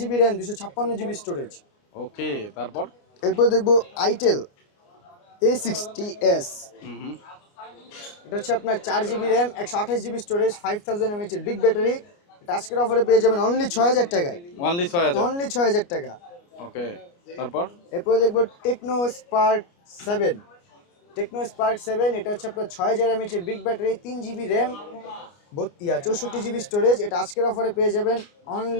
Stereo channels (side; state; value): right; late; 29 ms